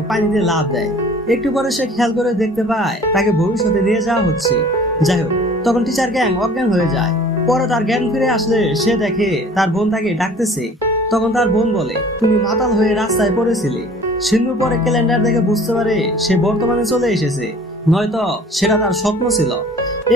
পানিতে লাফ দেয়। একটু পরে সে খেয়াল করে দেখতে পায় তাকে ভবিষ্যতে নিয়ে যাওয়া হচ্ছে। যাই হোক, তখন টিচার ক্যাং অজ্ঞান হয়ে যায়। পরে তার জ্ঞান ফিরে আসলে সে দেখে তার বোন তাকে ডাকতেছে। তখন তার বোন বলে, তুমি মাতাল হয়ে রাস্তায় পড়েছিলে। সিন্ধু পরে ক্যালেন্ডার দেখে বুঝতে পারে সে বর্তমানে চলে এসেছে, নয়তো সেটা তার স্বপ্ন ছিল।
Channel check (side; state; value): both; normal; correlation 0.49